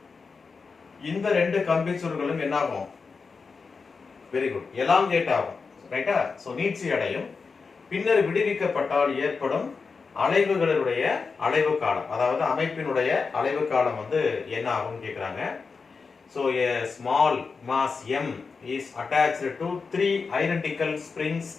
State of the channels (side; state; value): right; quieter; 4.9 dB